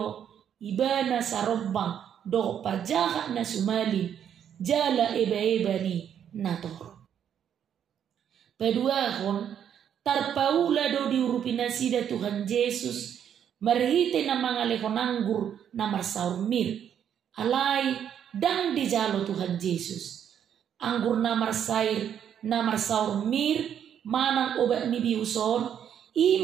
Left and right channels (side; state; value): left; quieter; 9.0 dB